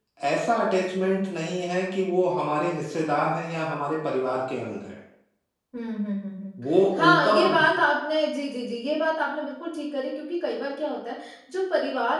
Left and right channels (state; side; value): identical; both; correlation 1.00